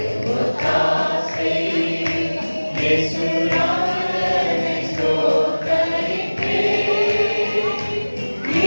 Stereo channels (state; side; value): inverted; both; correlation -1.00